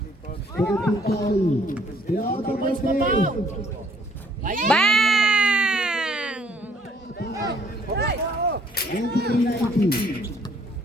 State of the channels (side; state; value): both; normal; correlation 0.63